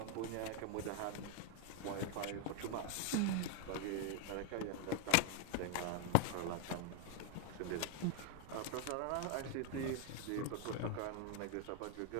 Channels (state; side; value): different; both; correlation 0.00